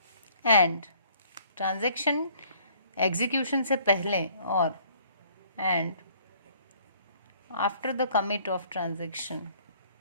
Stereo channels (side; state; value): both; inverted; correlation -0.59